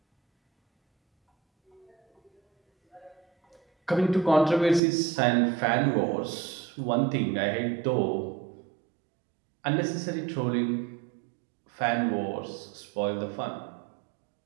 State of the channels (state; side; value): drops out; left; at 4.8 s